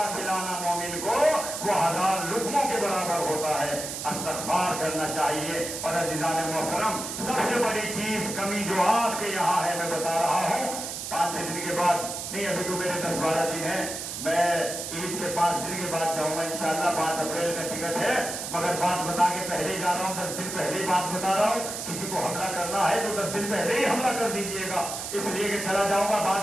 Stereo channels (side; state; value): right; noise; hiss, 6 dB below the sound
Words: کھلانا مومن کو وہ 1000 لقموں کے برابر ہوتا ہے۔ استغفار کرنا چاہیے۔ اور عزیزان محترم سب سے بڑی چیز کمی جو آپ کے یہاں ہے میں بتا رہا ہوں، 5-6 دن کے بعد نہیں، ابھی تو میرے 10-12 دن ہیں، میں عید کے 5 دن کے بعد جاؤں گا انشاءاللہ، 5 اپریل میں ٹکٹ ہے، مگر بات بتا کے پہلے ہی جا رہا ہوں، 10 دن پہلے ہی بات بتا رہا ہوں۔ کسی کو حملہ کرنا ہے تو 10 دن پہلے ہی حملہ کر دیجئے گا، اس لیے کہ چلا جاؤں گا